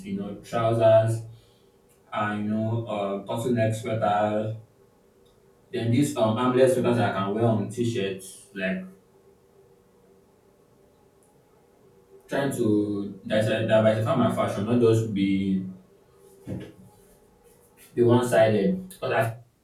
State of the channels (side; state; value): both; identical; correlation 1.00